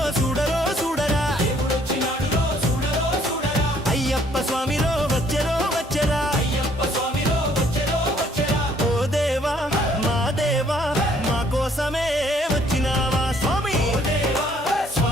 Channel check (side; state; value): both; normal; correlation 0.63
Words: చూడరో చూడరా దేవుడొచ్చినాడు రో చూడరో చూడరా అయ్యప్ప స్వామిరో వచ్చెరో వచ్చెరా అయ్యప్ప స్వామిరో వచ్చెరో వచ్చెరా ఓ దేవా మా కోసమే వచ్చినావా స్వామి ఓ దేవా